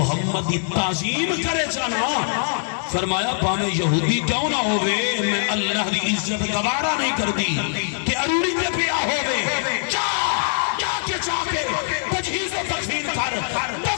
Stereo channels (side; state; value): right; silent; 64 dB below the other